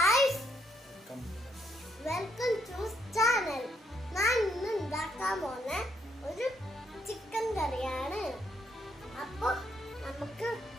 welcome to channel. ഞാൻ ഇന്ന് ഉണ്ടാക്കാൻ പോകുന്ന ഒരു ചിക്കൻ കറിയാണ്. അപ്പൊ നമുക്ക്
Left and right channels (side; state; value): both; normal; correlation 0.73